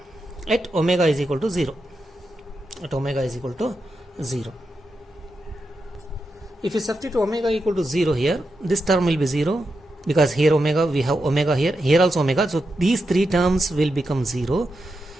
at omega is equal to 0. At omega is equal to 0. If you substitute omega equal to 0 here, this term will be 0 because here omega, we have omega here, here also omega. So these three terms will become 0.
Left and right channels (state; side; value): normal; both; correlation 0.87